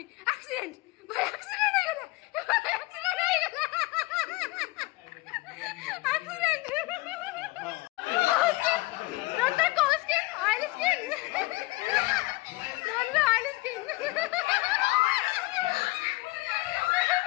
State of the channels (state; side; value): quieter; right; 21.7 dB